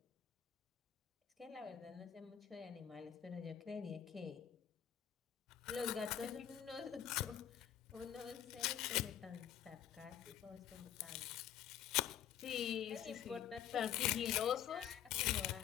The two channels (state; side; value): quieter; right; 10.2 dB